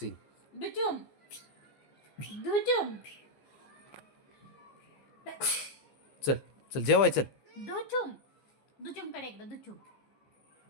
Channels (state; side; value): late; right; 14 ms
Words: दुचुम दुचुम चल चल जेवाय चल. दुचुम दुचुम कडे एकदा दुचुम